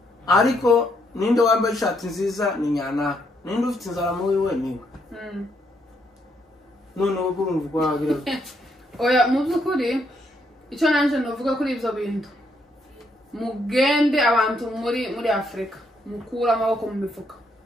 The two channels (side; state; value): both; normal; correlation 0.74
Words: ariko ninde wambaye ishati nziza ni nyana ninde ufite inzara mu wiwe niwe none ubu urumva kwagira oya mu byukuri icyo nanje novuga kuri ibyo bintu mugende abantu muri Afrika mukura amaboko mu mifuka